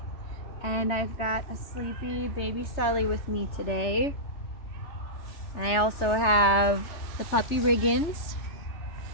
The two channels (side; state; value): right; late; 3.4 ms